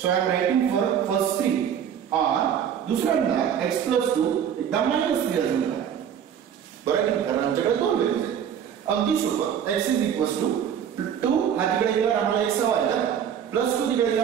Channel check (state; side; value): quieter; left; 8.7 dB